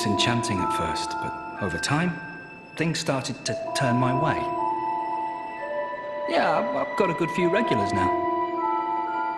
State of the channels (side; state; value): both; identical; correlation 1.00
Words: at first, but over time, things started to turn my way. Yeah, I've got a good few regulars now.